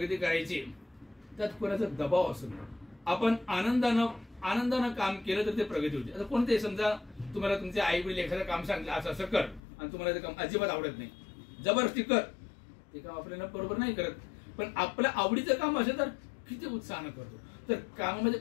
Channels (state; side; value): drops out; right; at 9.6 s